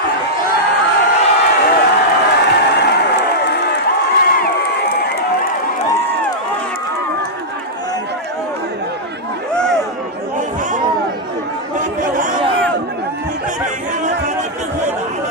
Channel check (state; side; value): normal; both; correlation -0.09